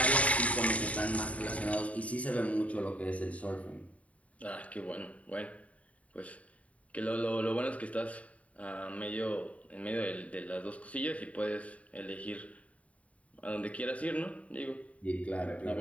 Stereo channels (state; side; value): late; right; 0.067 ms